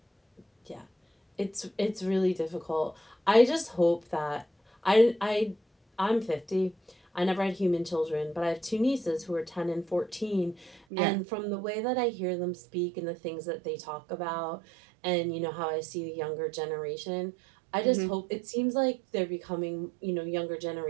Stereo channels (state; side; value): drops out; left; at 10.9 s